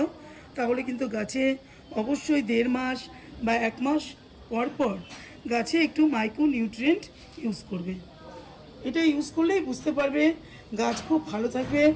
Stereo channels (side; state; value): both; identical; correlation 1.00